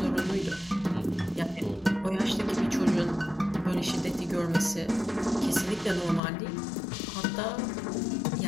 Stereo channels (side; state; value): right; drops out; at 6.2 s